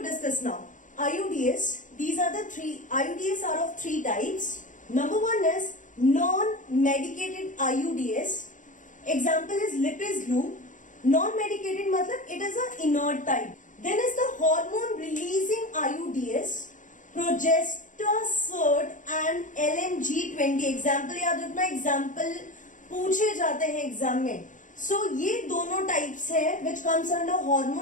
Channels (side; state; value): right; late; 0.37 ms